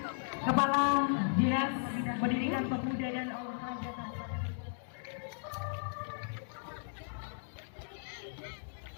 Kepala Dinas Pendidikan Pemuda dan Olahraga Kabupaten.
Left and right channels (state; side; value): silent; right; digital silence